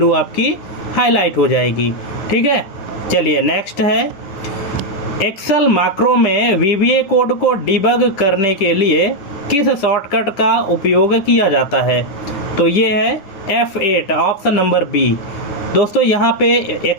आपकी हाईलाइट हो जाएगी, ठीक है। चलिए नेक्स्ट है एक्सेल मैक्रो में वीबीए कोड को डिबग करने के लिए किस शॉर्टकट का उपयोग किया जाता है? तो ये है F8, ऑप्शन नंबर बी। दोस्तों यहाँ पे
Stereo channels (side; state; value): right; late; 9.7 ms